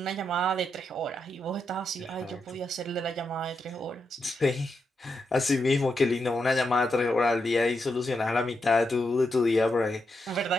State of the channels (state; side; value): normal; both; correlation 0.84